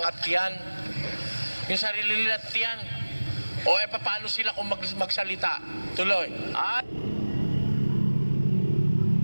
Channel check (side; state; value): both; inverted; correlation -1.00